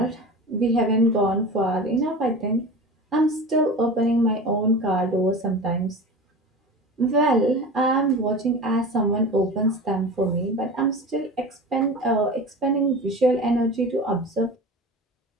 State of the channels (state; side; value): normal; both; correlation 0.33